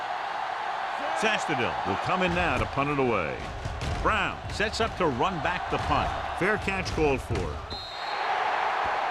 Sastadil will come in now to punt it away. Brown sets up to run back the punt. Fair catch called for.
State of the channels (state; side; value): identical; both; correlation 1.00